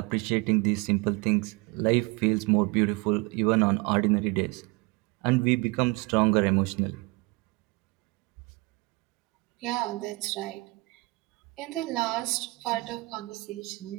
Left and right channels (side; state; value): left; quieter; 25.2 dB